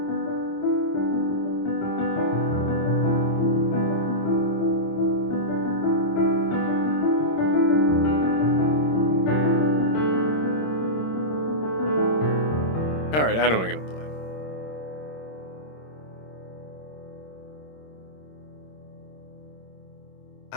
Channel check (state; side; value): late; right; 26 ms